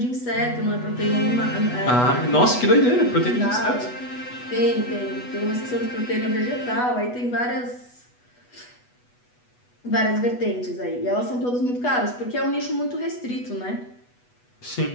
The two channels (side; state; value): right; late; 8.2 ms